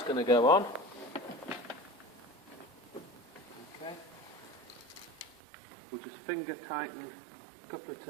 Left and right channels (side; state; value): left; drops out; at 5.4 s